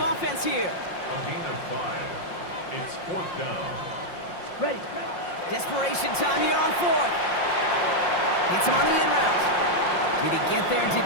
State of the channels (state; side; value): late; right; 5.6 ms